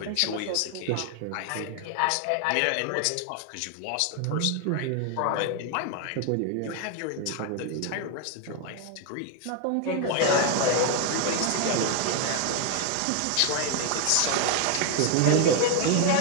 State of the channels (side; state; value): both; different; correlation 0.00